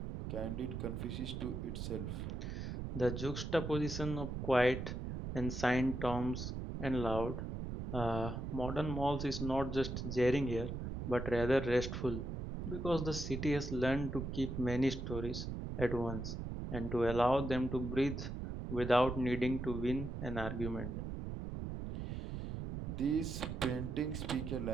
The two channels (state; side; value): noise; right; rumble, 5 dB below the sound